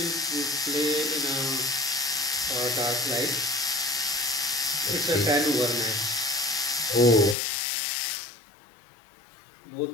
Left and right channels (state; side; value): drops out; right; at 7.4 s